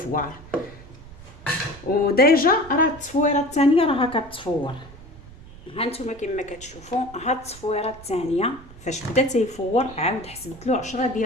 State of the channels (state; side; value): noise; right; rumble, 19 dB below the sound